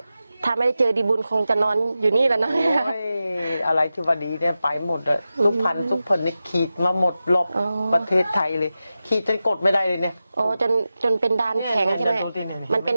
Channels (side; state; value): both; inverted; correlation -0.93